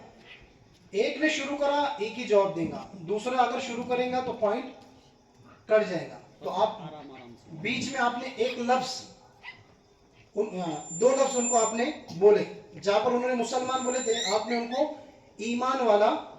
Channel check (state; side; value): identical; both; correlation 1.00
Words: एक ने शुरू करा, एक ही जवाब देगा, दूसरा अगर शुरू करेगा तो पॉइंट कट जाएगा। तो आप बीच में आपने एक लफ्ज, दो लफ्ज उनको आपने बोले। जहां पर उन्होंने मुसलमान बोले थे, आपने उनको ईमान वाला